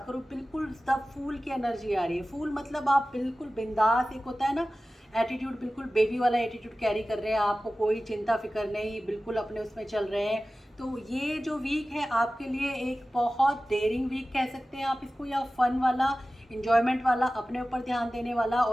करूँ, बिल्कुल द फूल की एनर्जी आ रही है। फूल मतलब आप बिल्कुल बिंदास, एक होता है ना एटीट्यूड, बिल्कुल बेबी वाला एटीट्यूड कैरी कर रहे हैं, आपको कोई चिंता फिक्र नहीं, बिल्कुल अपने उसमें चल रहे हैं। तो ये जो वीक है आपके लिए एक बहुत डेयरिंग वीक कह सकते हैं आप इसको, या फन वाला, इंजॉयमेंट वाला, अपने ऊपर ध्यान देने वाला।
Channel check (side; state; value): both; normal; correlation 0.96